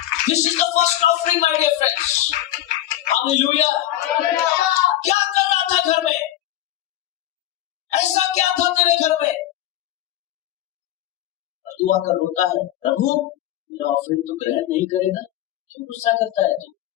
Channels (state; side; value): quieter; right; 13.3 dB